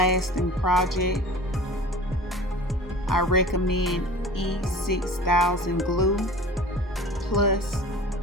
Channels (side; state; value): both; normal; correlation 0.40